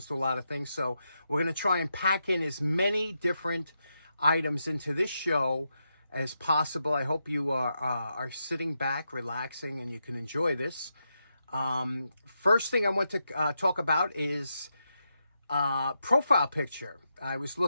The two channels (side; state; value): both; inverted; correlation -0.85